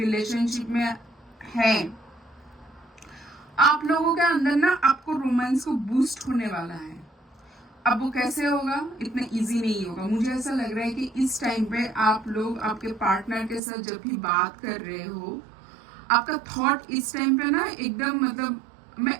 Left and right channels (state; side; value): drops out; left; at 13.6 s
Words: में है, आप लोगों के अंदर ना आपको रोमांस को बूस्ट होने वाला है। अब वो कैसे होगा, इतना इजी नहीं होगा। मुझे ऐसा लग रहा है कि इस टाइम पे आप लोग आपके पार्टनर के साथ जब भी बात कर रहे हो, आपका थॉट इस टाइम पे ना एकदम मतलब मैं